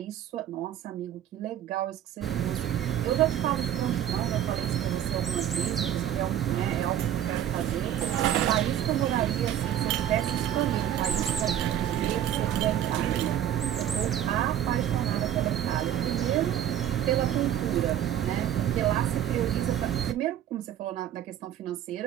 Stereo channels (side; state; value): left; quieter; 10.9 dB